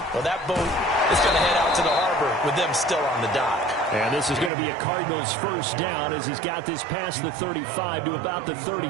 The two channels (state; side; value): drops out; left; at 4.5 s